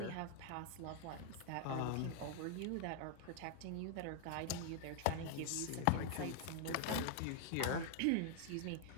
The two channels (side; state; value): both; different; correlation 0.00